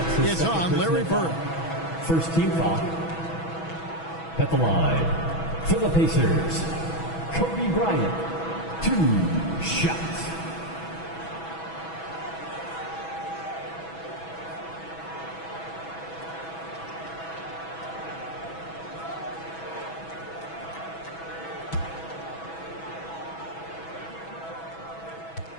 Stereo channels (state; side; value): late; right; 6.1 ms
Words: It's on Larry Bird. First team foul. At the line, for the Pacers, Kobe Bryant, 2 shots.